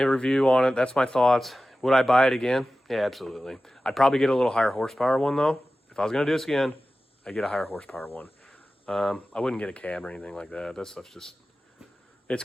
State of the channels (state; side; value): normal; both; correlation 0.95